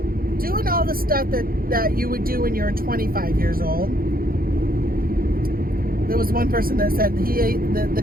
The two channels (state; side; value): late; left; 0.42 ms